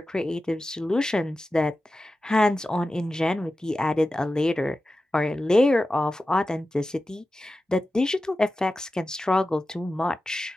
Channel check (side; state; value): both; normal; correlation 0.93